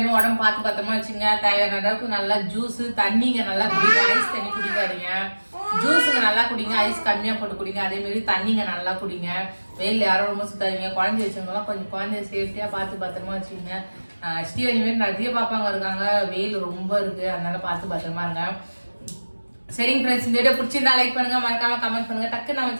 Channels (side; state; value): both; inverted; correlation -1.00